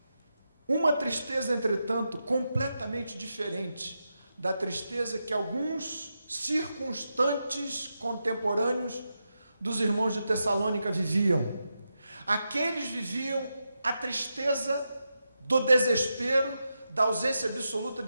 Uma tristeza, entretanto, completamente diferente da tristeza que alguns circunstantes contemporâneos dos irmãos de Tessalônica viviam. Aqueles viviam a tristeza do desespero, da ausência absoluta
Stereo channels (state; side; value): inverted; both; correlation -0.87